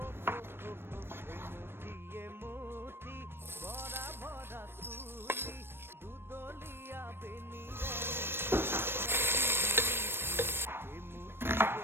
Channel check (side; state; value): left; late; 0.11 ms